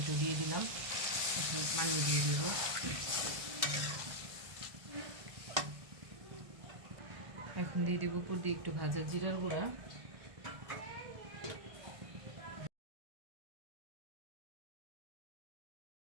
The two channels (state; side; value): late; left; 1.5 ms